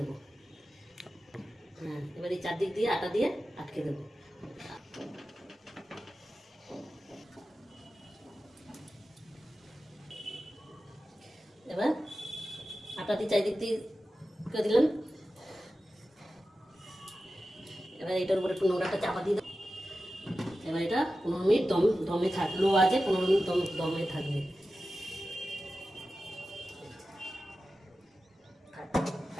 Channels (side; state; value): both; normal; correlation 0.93